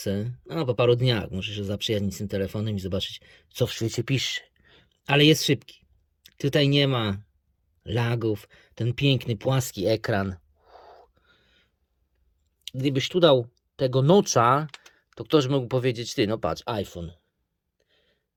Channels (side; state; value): both; identical; correlation 1.00